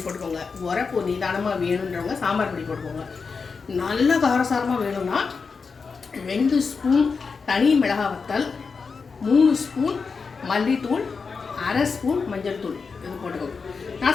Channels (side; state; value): right; quieter; 5.0 dB